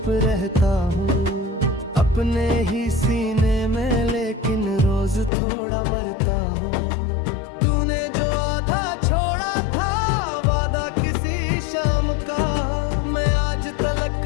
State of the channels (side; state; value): right; drops out; at 5.3 s